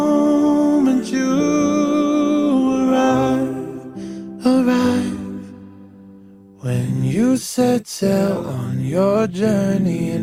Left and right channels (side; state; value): both; identical; correlation 1.00